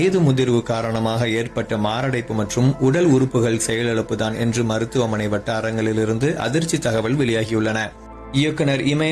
முதிர்வு காரணமாக ஏற்பட்ட மாரடைப்பு மற்றும் உடல் உறுப்புகள் செயலிழப்புதான் என்று மருத்துவமனை வட்டாரங்களிலிருந்து அதிர்ச்சி தகவல் வெளியாகியுள்ளன. இயக்குனர்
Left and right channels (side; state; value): both; identical; correlation 1.00